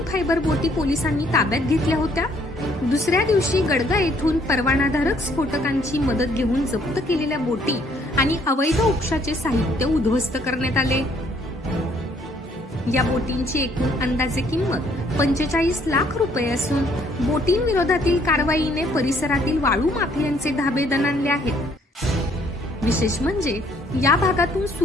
फायबर बोटी पोलिसांनी ताब्यात घेतल्या होत्या। दुसऱ्या दिवशी गडगा येथून परवानाधारक स्फोटकांची मदत घेऊन जप्त केलेल्या बोटी आणि अवैध उपशाचे साहित्य उद्ध्वस्त करण्यात आले। या बोटींची एकूण अंदाजे किंमत 45 लाख रुपये असून बोटींविरोधातील कारवाईने परिसरातील वाळू माफियांचे धाबे दणाणले आहेत। विशेष म्हणजे या भागातून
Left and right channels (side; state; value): both; normal; correlation 0.64